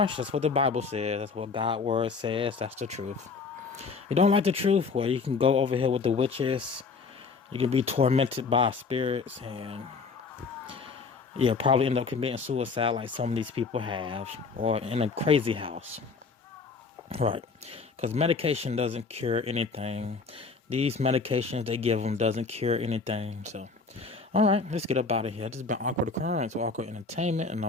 what the Bible says. That's what God's word says. That's the truth. You don't like the truth? Well, you can go over here with the witches. You can be tormented by spirits, and probably end up committing suicide like some of these people have, or in a crazy house. Right, because medication doesn't cure anything. These medications they give them doesn't cure anything. So, all right, let's get up out of here. This has been Awkward Occurrence or Awkward Entertainment, and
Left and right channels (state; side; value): quieter; right; 4.6 dB